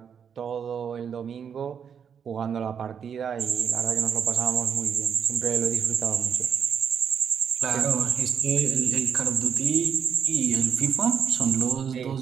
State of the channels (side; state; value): left; quieter; 7.4 dB